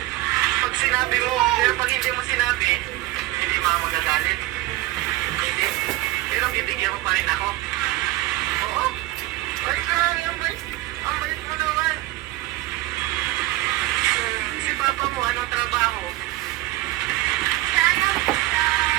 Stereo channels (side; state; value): left; quieter; 18.2 dB